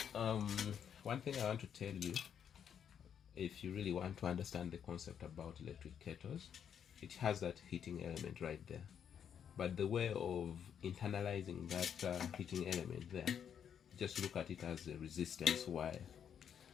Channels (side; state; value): right; quieter; 8.4 dB